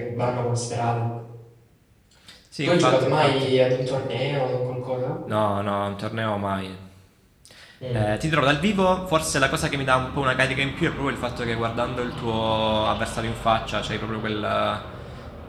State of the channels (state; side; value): identical; both; correlation 1.00